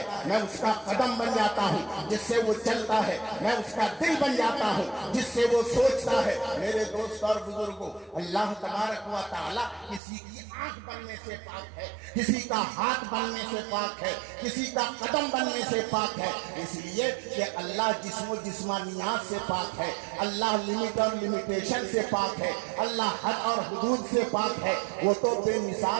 میں اس کا قدم بن جاتا ہوں جس سے وہ چلتا ہے, میں اس کا دل بن جاتا ہوں جس سے وہ سوچتا ہے. میرے دوست اور بزرگوں, اللہ تبارک و تعالی کسی کی آنکھ بننے سے پاک ہے, کسی کا ہاتھ بننے سے پاک ہے, کسی کا قدم بننے سے پاک ہے, اس لیے کہ اللہ جسم و جسمانیات سے پاک ہے, اللہ لمٹ اور لمیٹیشن سے پاک ہے, اللہ حد اور حدود سے پاک ہے. وہ تو بے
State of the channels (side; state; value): left; drops out; at 10.0 s